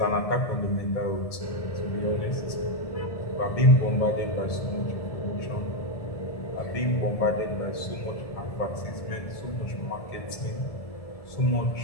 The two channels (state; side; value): late; right; 1.7 ms